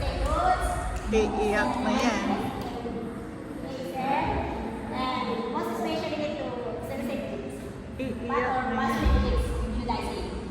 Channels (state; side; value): identical; both; correlation 1.00